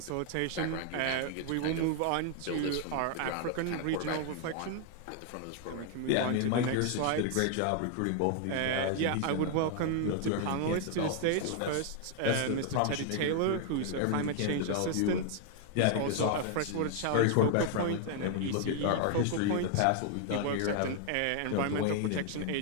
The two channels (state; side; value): different; both; correlation 0.00